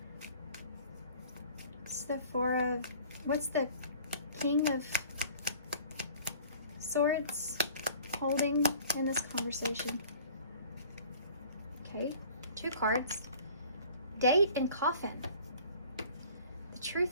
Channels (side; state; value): both; inverted; correlation -0.49